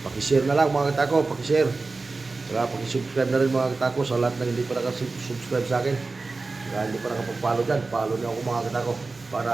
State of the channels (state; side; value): quieter; left; 3.7 dB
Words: Paki-share na lang mga katako, paki-share. Saka paki-subscribe na rin mga katako sa lahat na hindi pa nakasubscribe sa akin. Saka hindi pa nakapag-follow dyan, follow niyo ako mga katako para